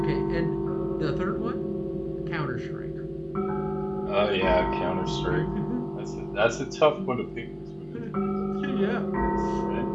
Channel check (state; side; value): identical; both; correlation 1.00